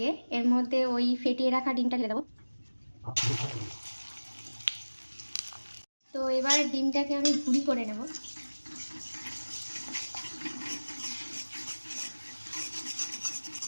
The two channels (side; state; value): both; inverted; correlation -1.00